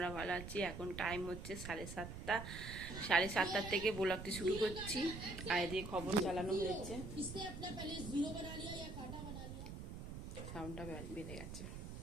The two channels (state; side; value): noise; right; rumble, 8 dB below the sound